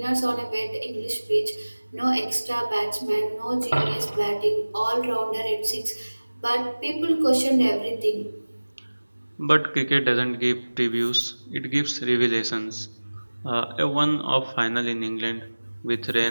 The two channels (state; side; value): inverted; both; correlation -1.00